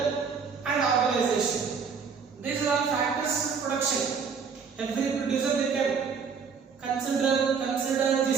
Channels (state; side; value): quieter; left; 5.9 dB